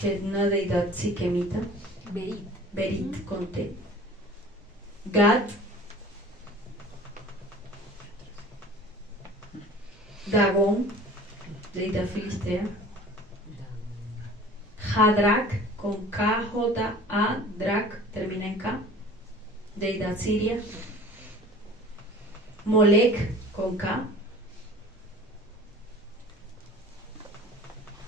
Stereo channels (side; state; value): both; normal; correlation 0.43